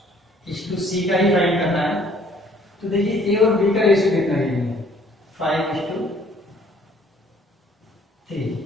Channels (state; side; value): normal; both; correlation 0.59